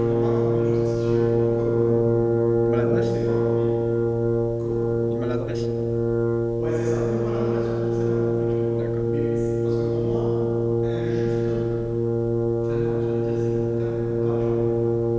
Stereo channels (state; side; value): identical; both; correlation 1.00